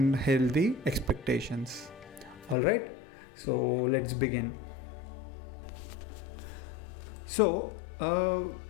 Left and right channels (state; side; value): drops out; right; at 2.6 s